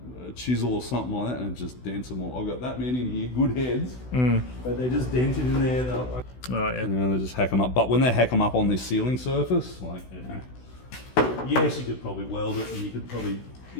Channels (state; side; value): late; right; 16 ms